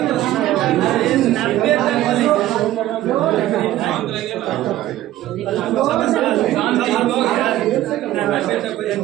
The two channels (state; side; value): quieter; left; 14.4 dB